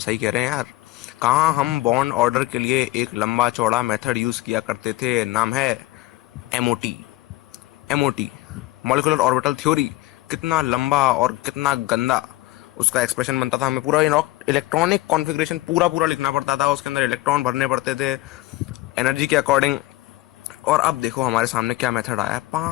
कह रहे हैं यार। कहाँ हम बॉन्ड ऑर्डर के लिए एक लंबा चौड़ा मेथड यूज किया करते थे, नाम है MOT. MOT, molecular orbital theory. कितना लंबा और कितना गंदा उसका एक्सप्रेशन बनता था। हमें पूरा इलेक्ट्रॉनिक कॉन्फ़िगरेशन पूरा लिखना पड़ता था, उसके अंदर इलेक्ट्रॉन भरने पड़ते थे एनर्जी के अकॉर्डिंग। और अब देखो हमारे सामने क्या मेथड आया है।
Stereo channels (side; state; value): right; quieter; 17.9 dB